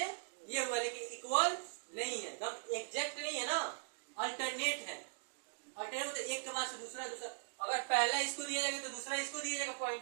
ये हुआ, लेकिन इक्वल नहीं है, एग्जैक्ट नहीं है ना, अल्टरनेट है। अल्टरनेट मतलब एक के बाद से दूसरा, अगर पहला इसको दिया जाएगा तो दूसरा इसको दिया जाएगा पॉइंट,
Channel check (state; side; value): silent; left; digital silence